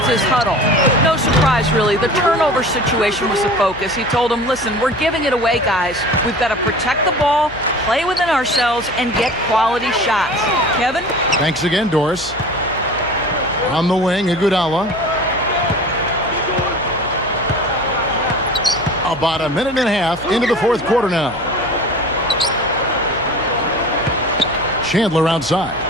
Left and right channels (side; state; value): left; noise; hum, 18 dB below the sound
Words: huddle. No surprise, really. The turnover situation was the focus. He told them, listen, we're giving it away, guys. We've got to protect the ball, play within ourselves, and get quality shots. Kevin? Thanks again, Doris. On the wing, Iguodala. About a minute and a half into the fourth quarter now. Chandler outside.